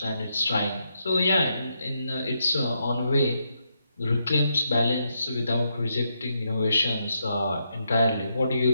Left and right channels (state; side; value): inverted; both; correlation -0.80